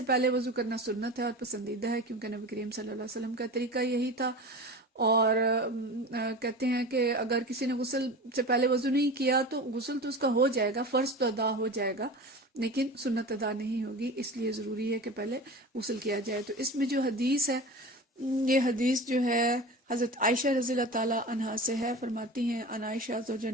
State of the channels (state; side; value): normal; both; correlation 0.32